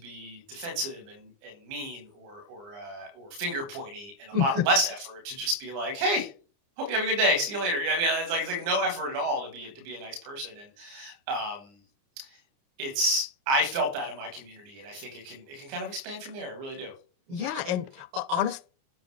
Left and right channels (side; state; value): left; late; 29 ms